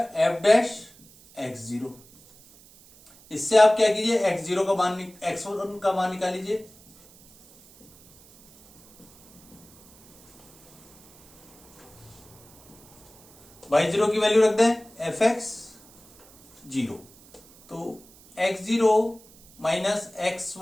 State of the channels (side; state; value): right; noise; hiss, 25 dB below the sound